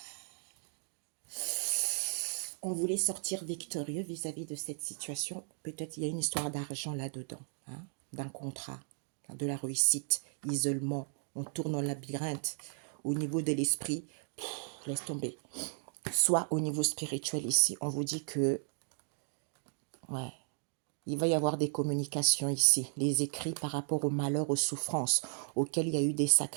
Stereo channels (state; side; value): silent; left; 54 dB below the other